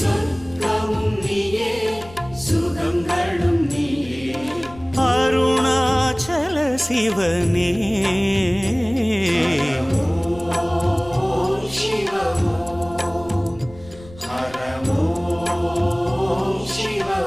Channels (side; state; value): left; noise; rumble, 20 dB below the sound